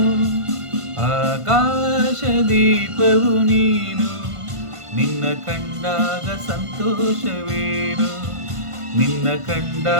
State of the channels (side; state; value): left; late; 1.5 ms